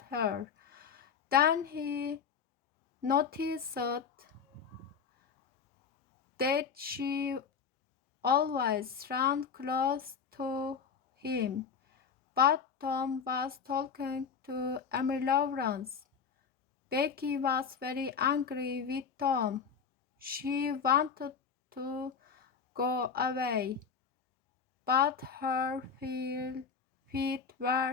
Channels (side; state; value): right; quieter; 6.3 dB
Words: her. Then he noticed that she always ran close to him. But Tom was talking to Emily Lawrence. Becky was very angry with Tom. She wanted to go away, but her feet